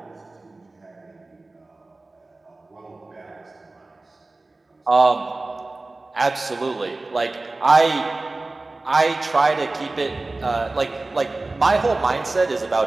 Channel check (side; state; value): left; quieter; 3.1 dB